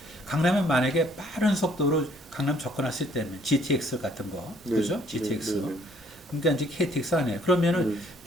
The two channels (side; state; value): both; normal; correlation 0.62